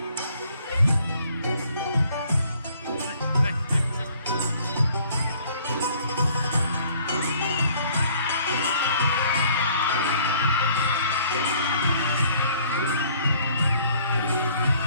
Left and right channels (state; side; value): inverted; both; correlation -0.59